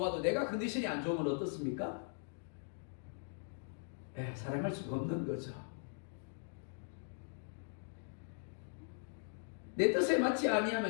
내가 컨디션이 안 좋으면 어떻습니까? 사랑할 수가 없는 거죠. 내 뜻에 맞지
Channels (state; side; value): silent; right; digital silence